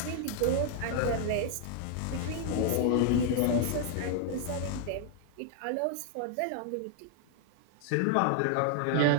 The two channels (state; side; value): different; both; correlation 0.00